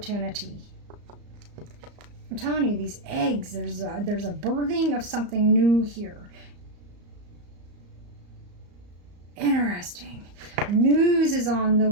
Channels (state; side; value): late; left; 34 ms